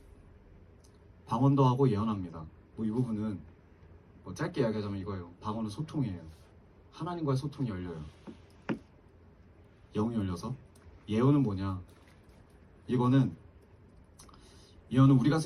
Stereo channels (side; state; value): both; identical; correlation 1.00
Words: 방언도 하고 예언합니다. 뭐 이 부분은 뭐 짧게 이야기하자면 이거예요. 방언은 소통이에요. 하나님과의 소통이 열려요. 영이 열려서. 예언은 뭐냐? 예언은 우리가